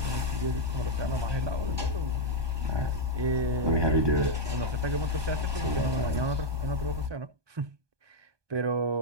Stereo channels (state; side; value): late; left; 1.2 ms